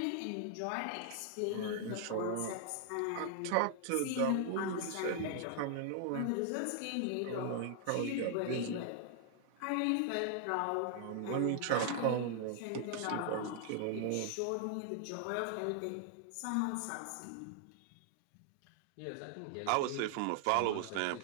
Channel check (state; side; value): different; both; correlation 0.00